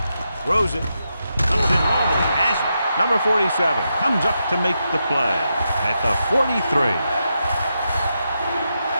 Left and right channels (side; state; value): both; inverted; correlation -0.85